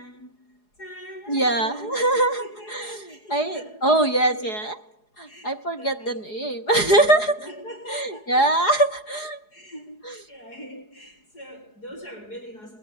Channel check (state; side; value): late; right; 4.8 ms